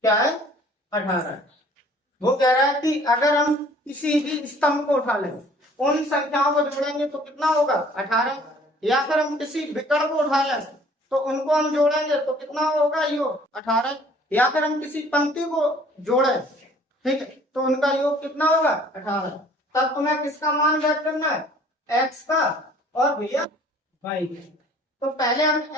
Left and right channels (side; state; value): both; normal; correlation 0.54